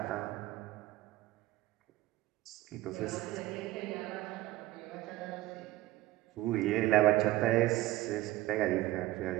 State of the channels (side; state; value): left; quieter; 16.5 dB